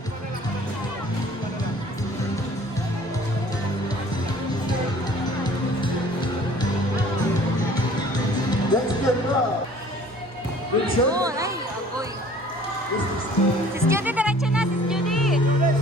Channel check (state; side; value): normal; both; correlation 0.51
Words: Let's get up. Yun. Ay, agoy. Sis Judy, diretso na. Sis Judy.